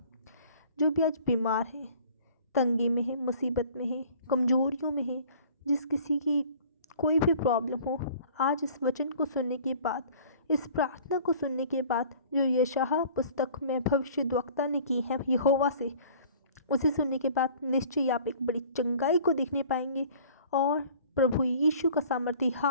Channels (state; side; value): inverted; both; correlation -0.49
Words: जो भी आज बीमार है, तंगी में है, मुसीबत में है, कमजोरियों में है, जिस किसी की कोई भी प्रॉब्लम हो, आज इस वचन को सुनने के बाद, इस प्रार्थना को सुनने के बाद जो यशायाह पुस्तक में भविष्यद्वक्ता ने की है यहोवा से, उसे सुनने के बाद निश्चय आप एक बड़ी चंगाई को देखने पाएंगे और प्रभु यीशु का सामर्थी